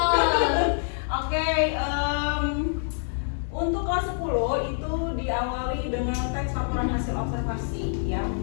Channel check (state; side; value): silent; right; digital silence